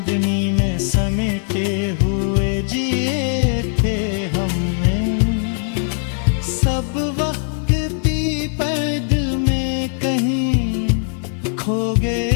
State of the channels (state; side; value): silent; right; 57 dB below the other